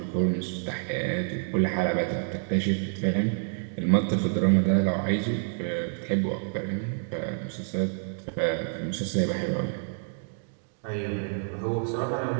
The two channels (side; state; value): left; silent; digital silence